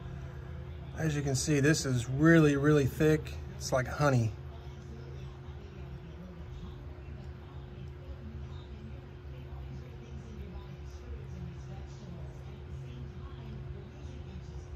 As you can see, this is really, really thick. It's like honey.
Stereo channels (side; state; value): both; identical; correlation 1.00